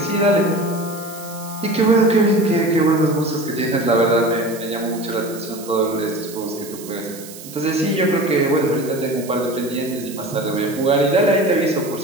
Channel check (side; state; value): right; noise; hiss, 15 dB below the sound